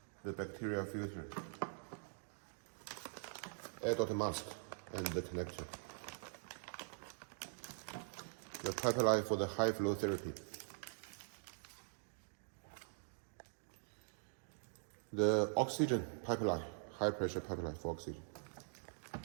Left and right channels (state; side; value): silent; left; digital silence